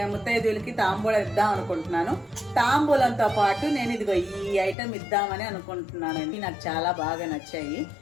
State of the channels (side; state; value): right; drops out; at 4.8 s